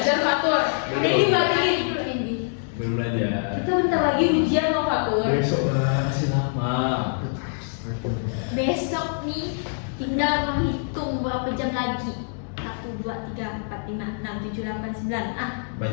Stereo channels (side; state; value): right; silent; digital silence